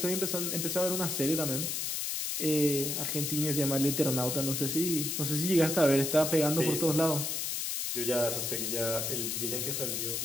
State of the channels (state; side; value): noise; left; hiss, 1 dB below the sound